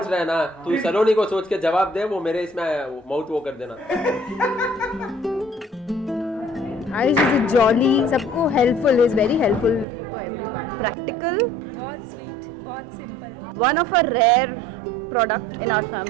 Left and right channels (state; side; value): drops out; left; at 9.9 s